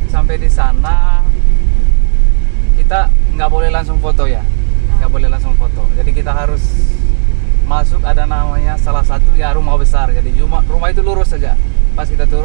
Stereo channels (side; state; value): left; silent; digital silence